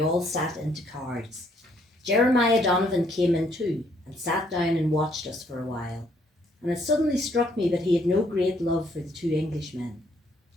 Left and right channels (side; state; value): both; normal; correlation 0.68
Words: all sat into cards. Jeremiah Donovan came in too, and sat down and watched us for a while, and it suddenly struck me that he had no great love for the two Englishmen.